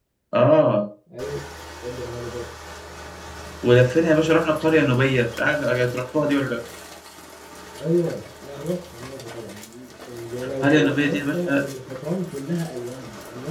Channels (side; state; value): both; identical; correlation 1.00